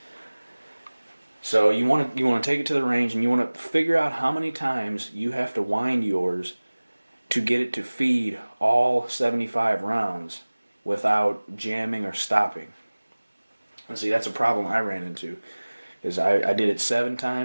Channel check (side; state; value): both; inverted; correlation -1.00